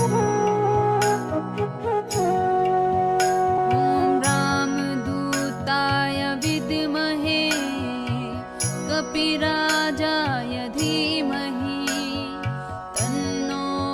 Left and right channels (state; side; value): identical; both; correlation 1.00